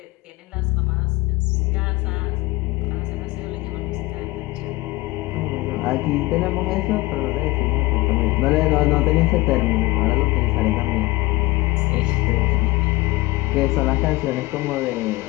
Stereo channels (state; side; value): quieter; right; 20.6 dB